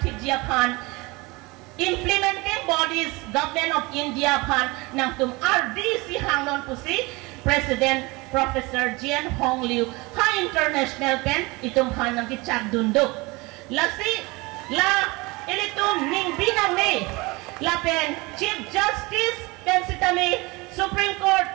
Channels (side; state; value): left; quieter; 24.4 dB